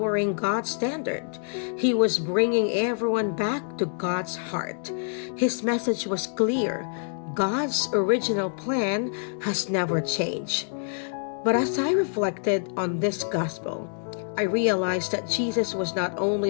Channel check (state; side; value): silent; right; digital silence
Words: God's standard. He was bringing everyone back to God's heart. His message was clear. God's original plan has never changed. But as I reflected on this gospel, I realized that Jesus was not only